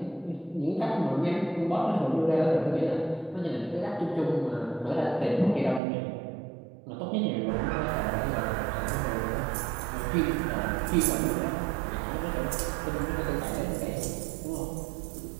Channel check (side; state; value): left; drops out; at 5.8 s